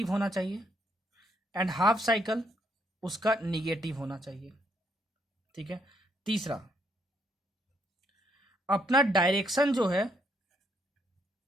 होना चाहिए एंड हाफ साइकिल उसका निगेटिव होना चाहिए। ठीक है, तीसरा अपना डायरेक्शन जो है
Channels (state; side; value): normal; both; correlation 0.72